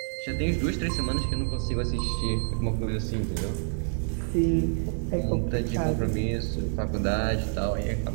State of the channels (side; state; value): left; silent; 60 dB below the other